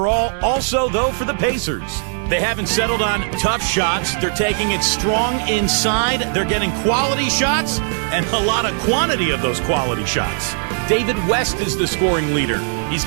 also, though, for the Pacers. They haven't settled on tough shots. They're taking it strong inside. They're getting quality shots and a lot of quantity of those quality shots. David West is the scoring leader. He's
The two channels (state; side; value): silent; left; 64 dB below the other